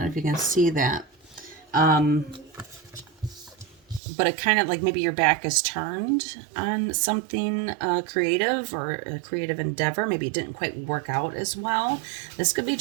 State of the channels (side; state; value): left; drops out; at 4.0 s